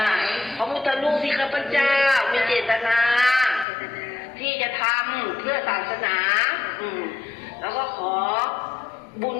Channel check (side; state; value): right; drops out; at 3.7 s